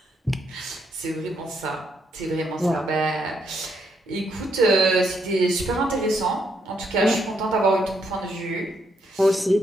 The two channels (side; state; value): both; normal; correlation 0.76